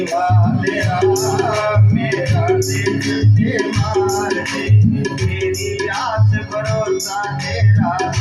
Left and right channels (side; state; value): both; identical; correlation 1.00